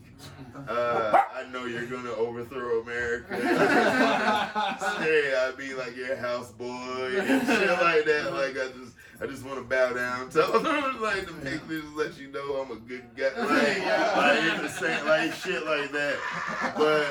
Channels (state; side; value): identical; both; correlation 1.00